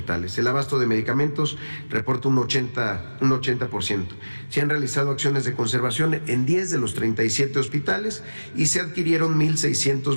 El abasto de medicamentos reporta un 80%. Se han realizado acciones de conservación en 10 de los 37 hospitales y se adquirieron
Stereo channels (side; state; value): both; inverted; correlation -1.00